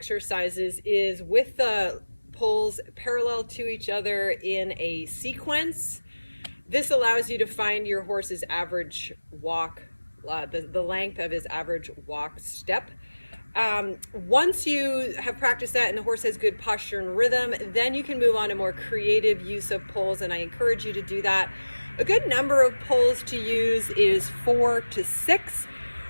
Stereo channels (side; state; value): both; inverted; correlation -1.00